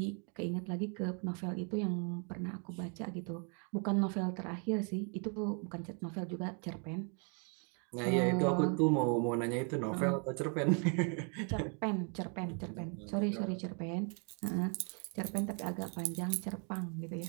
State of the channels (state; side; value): quieter; left; 39.2 dB